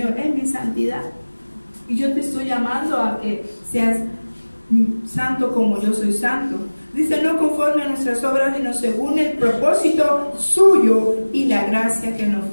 es mi santidad. Y yo te estoy llamando a que seas santo como yo soy santo. Dice, no conforme a nuestras obras, sino según el propósito suyo y la gracia que nos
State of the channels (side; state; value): both; inverted; correlation -1.00